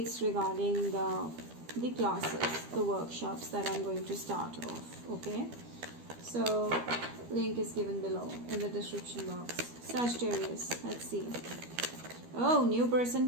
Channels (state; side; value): late; left; 12 ms